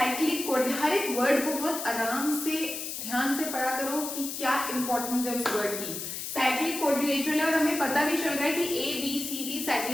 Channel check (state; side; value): noise; left; hiss, 6 dB below the sound